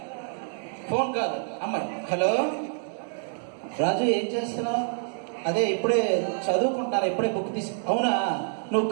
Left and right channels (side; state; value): left; silent; 59 dB below the other